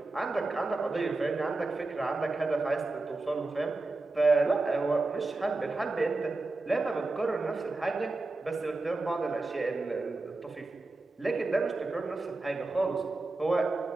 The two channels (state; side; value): quieter; left; 3.3 dB